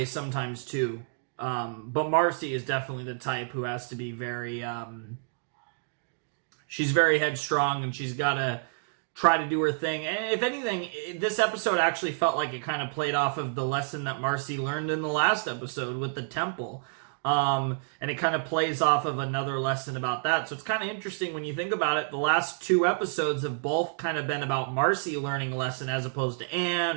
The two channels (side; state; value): left; silent; digital silence